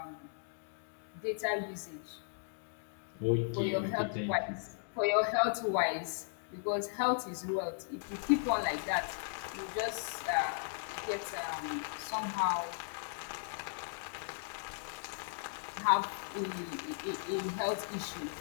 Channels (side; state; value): right; silent; digital silence